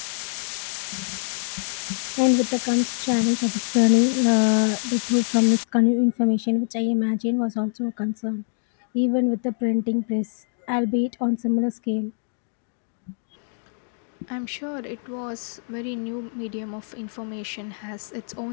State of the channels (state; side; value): silent; right; 59 dB below the other